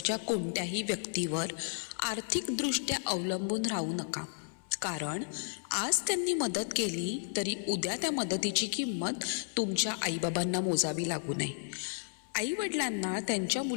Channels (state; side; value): silent; right; 56 dB below the other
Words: कोणत्याही व्यक्तीवर आर्थिकदृष्ट्या अवलंबून राहू नका. कारण आज त्यांनी मदत केली तरी उद्या त्या मदतीची किंमत तुमच्या आईबाबांना मोजावी लागू नये. आईवडिलांना त्यांच्या